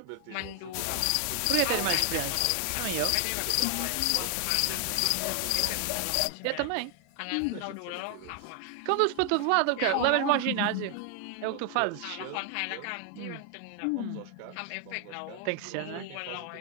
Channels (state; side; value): different; both; correlation 0.00